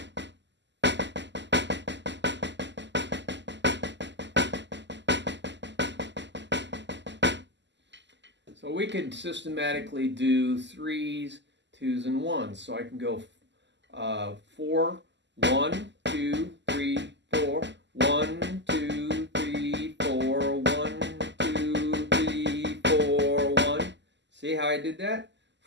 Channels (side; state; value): left; late; 0.52 ms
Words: So we could systematically do threes, twos, and ones. So I can go 4, 1, 2, 3, 4, 1, 2, 3, 4, 1, 2, 3, 4, 1. See how I did that?